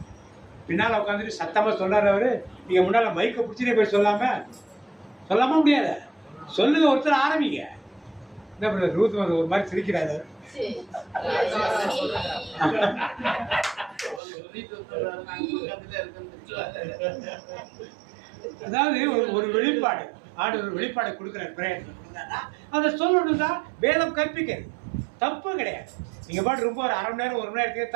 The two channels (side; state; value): left; drops out; at 14.2 s